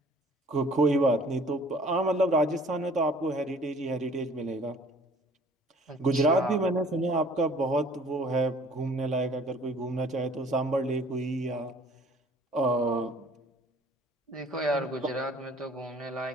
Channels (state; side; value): normal; both; correlation 0.53